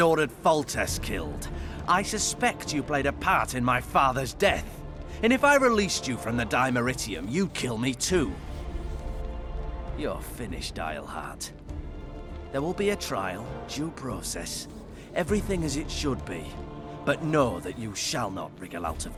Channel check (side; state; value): both; identical; correlation 1.00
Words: Foltest killed. I suspect you played a part in my father's death. And if I released you from the Dimeritium, you'd kill me too. You're finished, Eilhart. There will be a trial, due process, everything as it should be. But know that you shall not wriggle out of